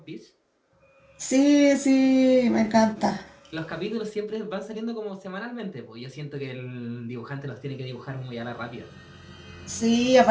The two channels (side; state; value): both; identical; correlation 1.00